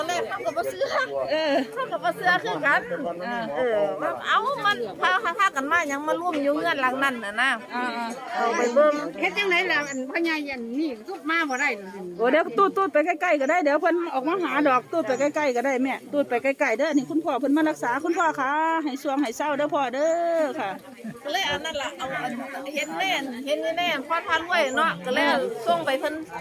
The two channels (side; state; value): both; identical; correlation 1.00